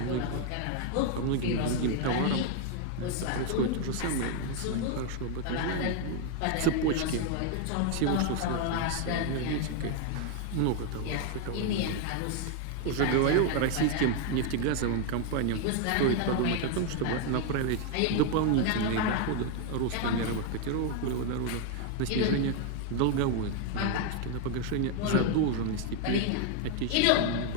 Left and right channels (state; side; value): different; both; correlation 0.01